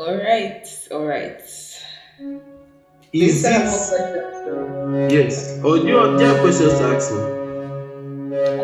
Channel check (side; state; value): both; identical; correlation 1.00